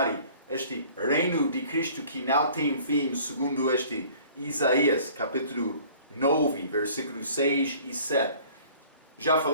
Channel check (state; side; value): inverted; both; correlation -0.51